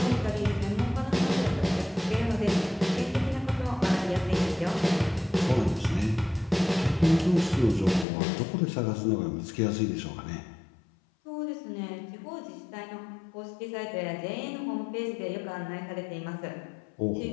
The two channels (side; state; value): right; drops out; at 8.1 s